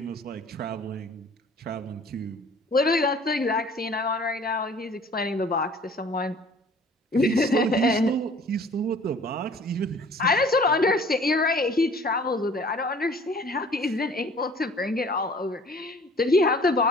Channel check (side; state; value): both; normal; correlation 0.51